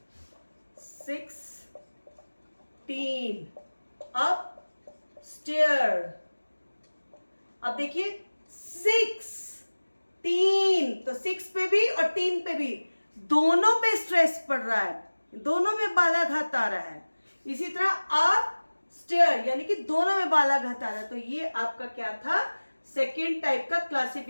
16 अपस्टेयर। अब देखिए 6 3, तो 6 पे भी और 3 पे भी दोनों पे स्ट्रेस पड़ रहा है, दोनों में बालाघात आ रहा है। इसी तरह अप स्टेयर यानी कि दोनों में बालाघात आ रहा है। तो ये आपका क्या था, सेकेंड टाइप का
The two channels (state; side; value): inverted; both; correlation -1.00